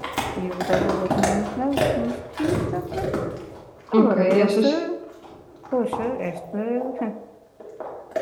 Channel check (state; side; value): identical; both; correlation 1.00